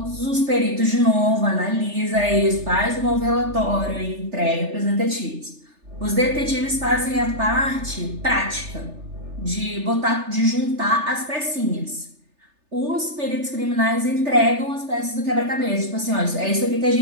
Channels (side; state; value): left; late; 3.3 ms